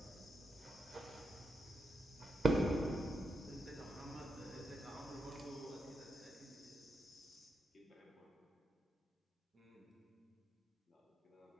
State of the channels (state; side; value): normal; both; correlation 0.83